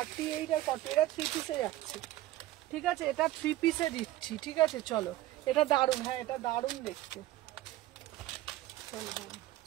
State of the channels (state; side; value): quieter; left; 15.4 dB